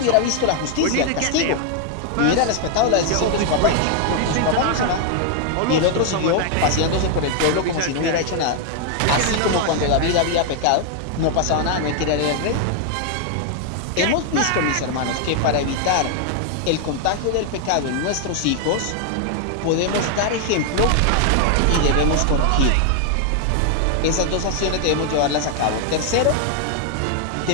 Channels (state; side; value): different; both; correlation 0.00